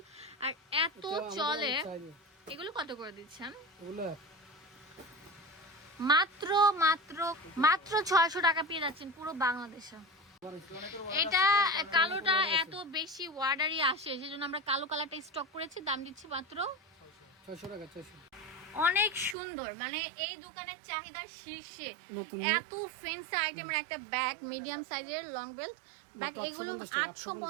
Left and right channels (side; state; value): left; drops out; at 19.4 s